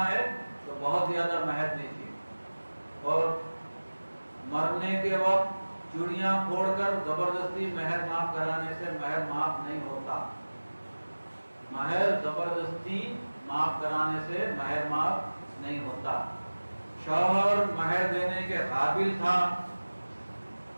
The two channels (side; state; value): both; inverted; correlation -1.00